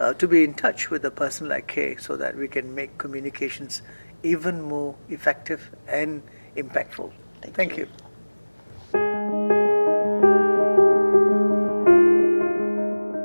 touch with a person like Kay, so that we can make communications even more effective and impactful. Thank you.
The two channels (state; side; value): inverted; both; correlation -1.00